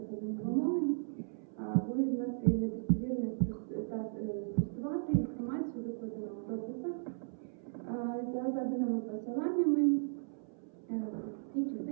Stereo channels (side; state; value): left; silent; 54 dB below the other